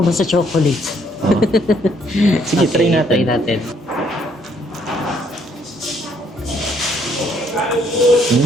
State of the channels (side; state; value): both; normal; correlation 0.68